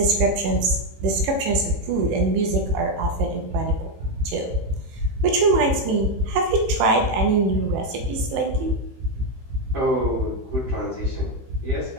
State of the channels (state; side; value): late; left; 15 ms